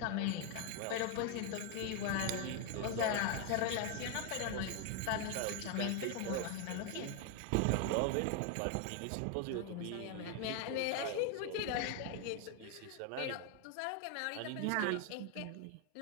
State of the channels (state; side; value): different; both; correlation 0.01